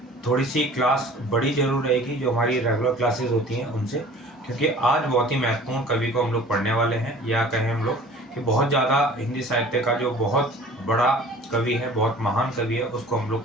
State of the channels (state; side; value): normal; both; correlation 0.46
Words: थोड़ी सी क्लास बड़ी जरूर रहेगी जो हमारी रेगुलर क्लासेस होती हैं उनसे, क्योंकि आज बहुत ही महत्वपूर्ण कवि को हम लोग पढ़ने वाले हैं, या कहें हम लोग कि बहुत ज़्यादा हिंदी साहित्य का जो बहुत बड़ा कवि है, बहुत महान कवि है, उसको हम लोग